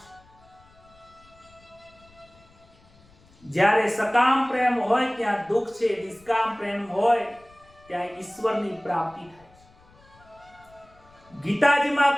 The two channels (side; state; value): left; noise; rumble, 28 dB below the sound